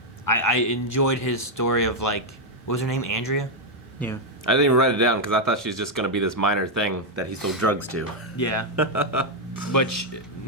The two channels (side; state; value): both; normal; correlation 0.01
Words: I enjoyed his story of like, what was her name, Andrea? Yeah. I didn't even write it down because I thought she was just going to be this minor thing that he sold drugs to. Yeah. But